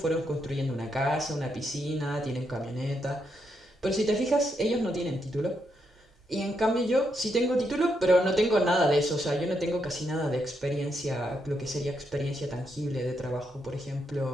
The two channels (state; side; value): normal; both; correlation 0.80